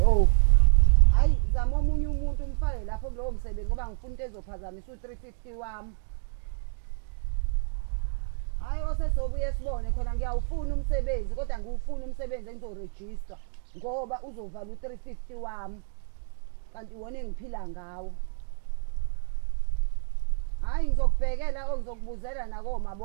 Hayi zama omunye umuntu umfake lapho kulowo msebenzi ngoba ngifuna into ezophazamisa u350 wami. Hayi osesobuye sibone khona ngiyawufuna umsebenzi kodwa ngiwufuna umsebenzi engizorejista ngoba uzovala u350 wami. Kanti wona engiphila ngawo. Hayi ngizokubhekela ngizokubuzela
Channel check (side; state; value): left; silent; digital silence